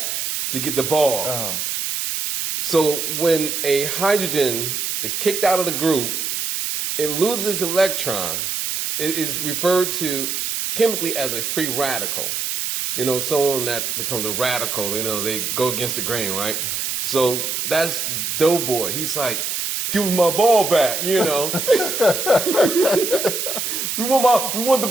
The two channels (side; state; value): right; noise; hiss, 2 dB below the sound